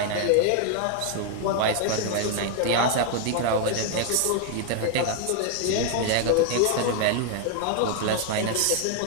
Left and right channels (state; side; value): different; both; correlation 0.00